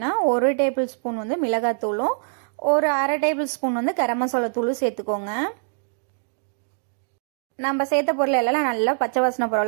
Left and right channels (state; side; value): silent; left; digital silence